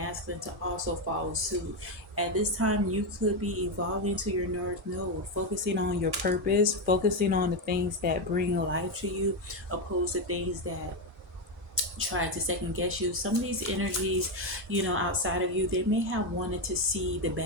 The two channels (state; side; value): normal; both; correlation 0.08